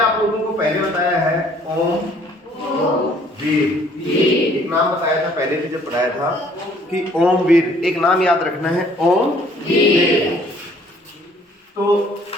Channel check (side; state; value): both; normal; correlation 0.60